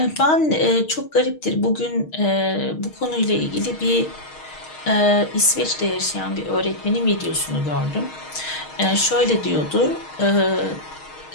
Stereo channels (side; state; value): right; late; 6.4 ms